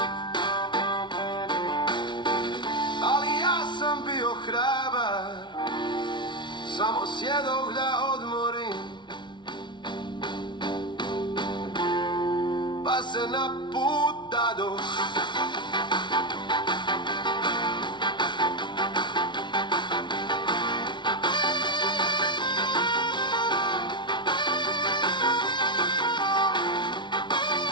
Ali ja sam bio hrabar, samo sjedoh da odmorim, pa se na put dadoh.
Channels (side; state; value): right; late; 0.23 ms